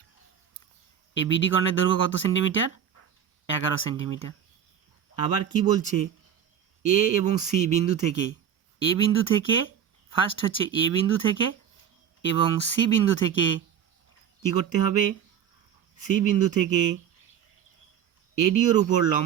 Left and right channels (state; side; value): quieter; left; 8.7 dB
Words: এই বিডি কর্ণের দৈর্ঘ্য কত সেন্টিমিটার? 11 সেন্টিমিটার। আবার কি বলছে, এ এবং সি বিন্দু থেকে ফার্স্ট হচ্ছে এ বিন্দু থেকে এবং সি বিন্দু থেকে কি করতে হবে, সি বিন্দু থেকে এডিওর উপর